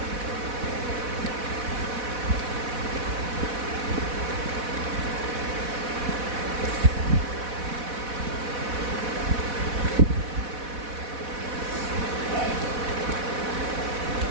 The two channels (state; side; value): late; left; 4.1 ms